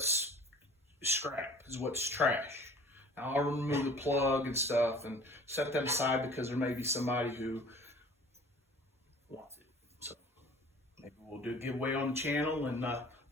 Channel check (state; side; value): normal; both; correlation 0.47